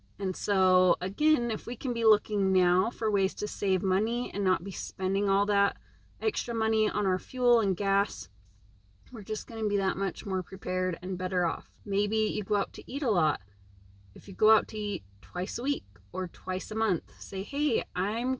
And so, again, if we can be looking now for ways to save money and not be spending all that extra money on our fuel and gas, we're just going to be that much more prepared and better off. Maybe you go out to eat a lot. If you go out to eat twice a week or twice a month, say, hey, I'm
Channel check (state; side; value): identical; both; correlation 1.00